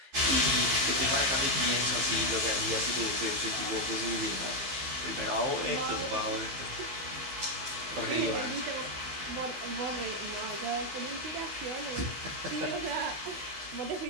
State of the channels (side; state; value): left; late; 15 ms